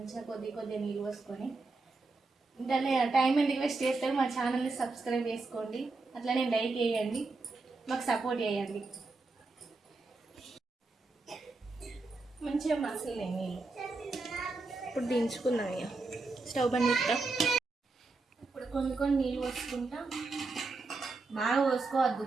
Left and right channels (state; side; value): quieter; left; 3.7 dB